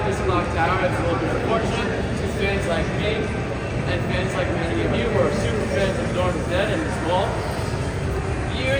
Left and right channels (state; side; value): identical; both; correlation 1.00